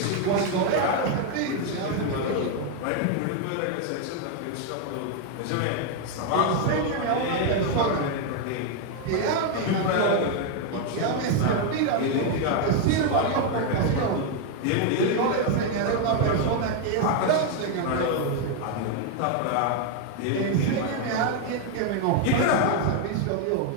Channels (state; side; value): different; both; correlation 0.01